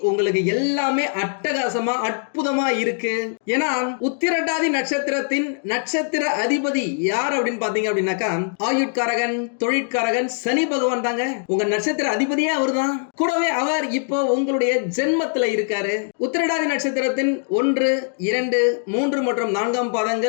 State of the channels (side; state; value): right; silent; digital silence